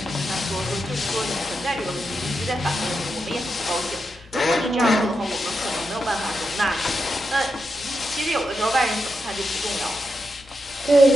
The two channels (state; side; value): normal; both; correlation 0.86